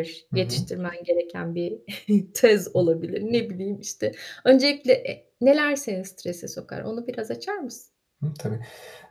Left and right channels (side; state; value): both; identical; correlation 1.00